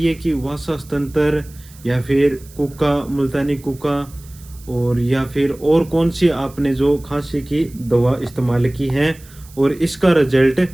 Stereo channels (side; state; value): right; noise; hiss, 23 dB below the sound